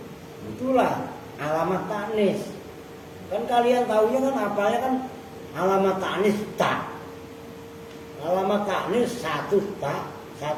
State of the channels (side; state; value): both; identical; correlation 1.00